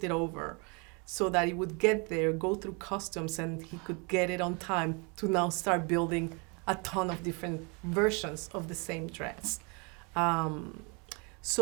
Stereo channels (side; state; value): left; quieter; 32.0 dB